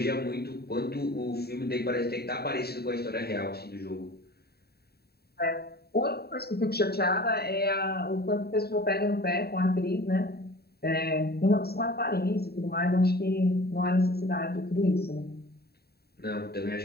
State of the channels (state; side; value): late; right; 0.46 ms